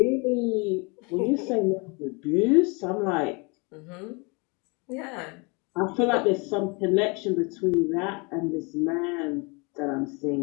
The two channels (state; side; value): quieter; right; 30.2 dB